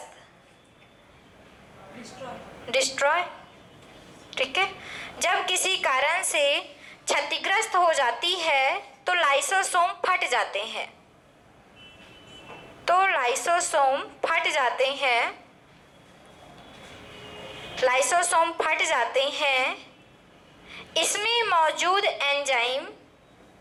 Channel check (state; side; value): identical; both; correlation 1.00